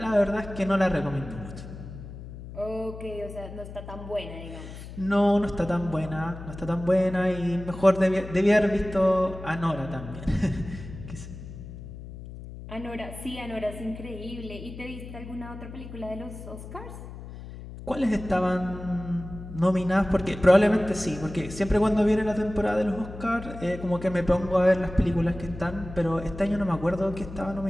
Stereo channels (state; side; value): noise; left; hum, 12 dB below the sound